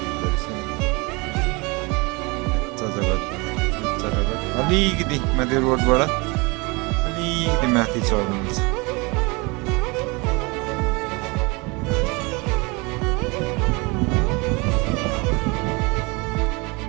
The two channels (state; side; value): quieter; left; 27.3 dB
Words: गरिन्छ। अलिकति माथि रोडबाट अलिकति माथि चढ्नुहुन्छ।